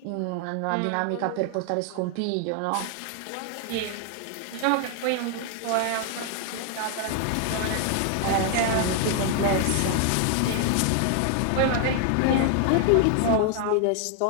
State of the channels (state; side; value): different; both; correlation 0.00